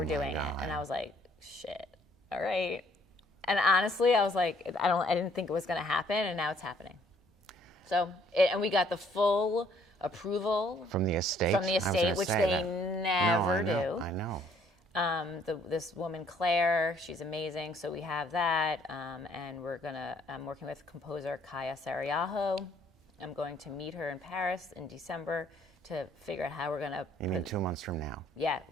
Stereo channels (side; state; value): both; normal; correlation 0.63